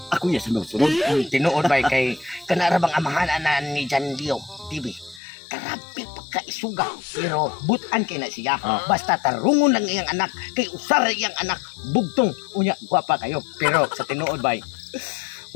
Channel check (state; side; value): drops out; right; at 5.2 s